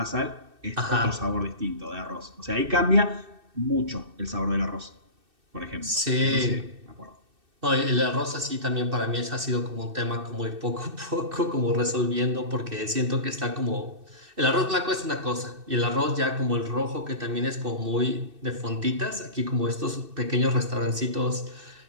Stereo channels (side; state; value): left; late; 2.6 ms